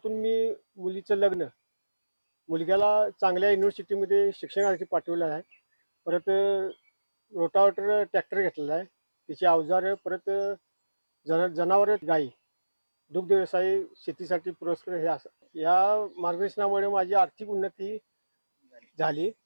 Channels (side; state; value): both; inverted; correlation -1.00